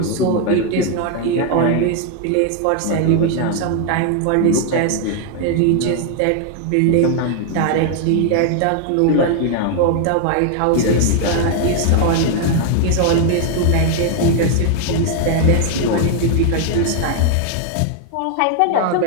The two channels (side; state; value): both; different; correlation 0.00